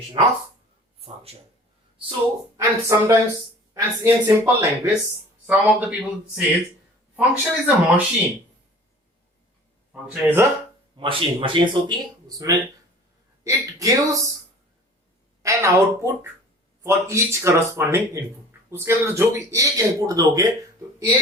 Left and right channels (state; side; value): normal; both; correlation 0.45